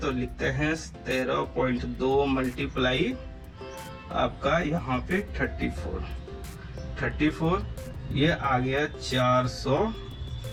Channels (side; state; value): both; identical; correlation 1.00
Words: लिखते हैं 13.2 मल्टीप्लाई आपका यहाँ पे 34, ये आ गया